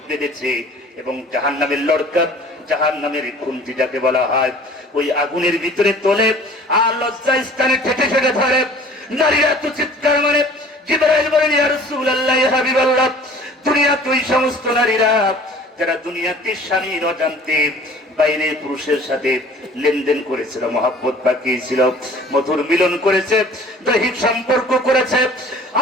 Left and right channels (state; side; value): normal; both; correlation 0.48